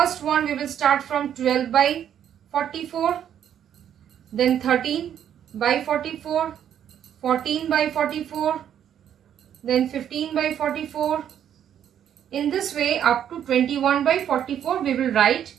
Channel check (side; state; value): left; quieter; 9.7 dB